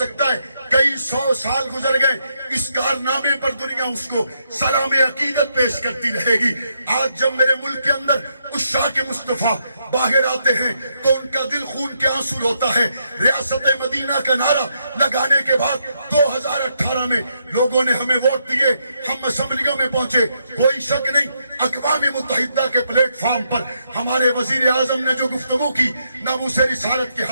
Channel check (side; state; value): both; inverted; correlation -0.78